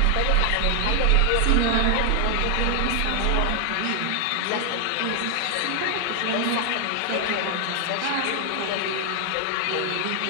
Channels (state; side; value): different; both; correlation 0.00